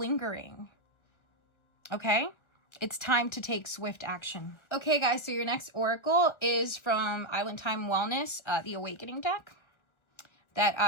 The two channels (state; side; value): late; right; 1.4 ms